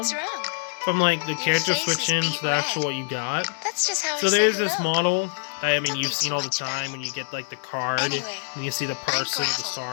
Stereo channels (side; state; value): right; silent; digital silence